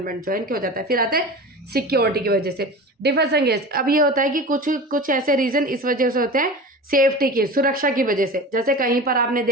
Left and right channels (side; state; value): both; normal; correlation 0.32